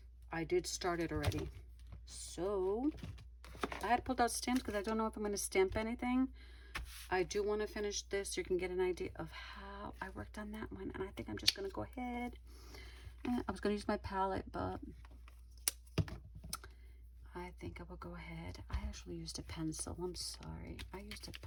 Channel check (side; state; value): both; identical; correlation 1.00